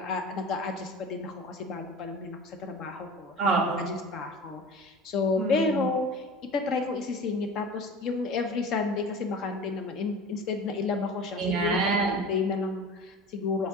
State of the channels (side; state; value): both; normal; correlation 0.37